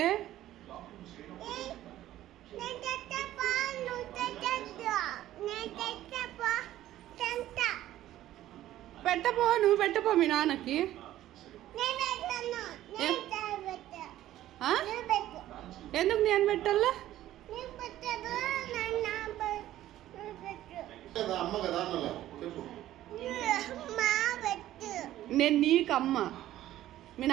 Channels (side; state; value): left; quieter; 13.7 dB